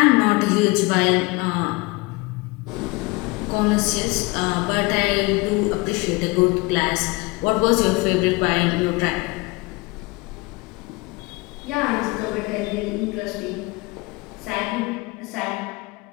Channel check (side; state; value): right; quieter; 24.7 dB